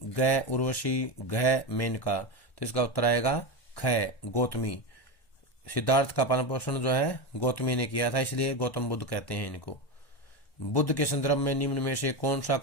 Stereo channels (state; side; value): late; right; 1.1 ms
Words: ग उर्वशी, घ मेनका। तो इसका उत्तर आएगा ख गौतमी। सिद्धार्थ का पालन पोषण जो है गौतमी ने किया था, इसलिए गौतम बुद्ध कहते हैं इनको। बुद्ध के संदर्भ में निम्न में से कौन सा